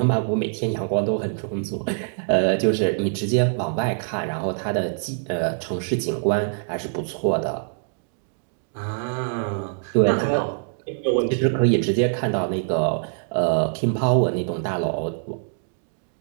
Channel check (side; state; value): left; silent; digital silence